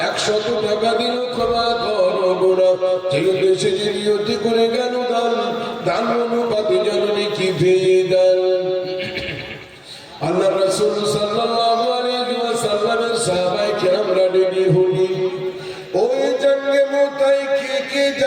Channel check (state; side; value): identical; both; correlation 1.00